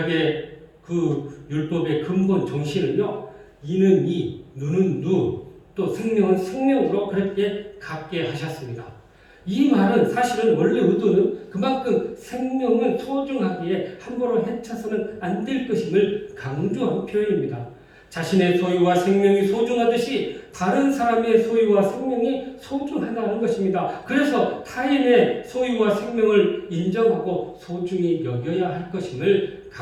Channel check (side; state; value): both; identical; correlation 1.00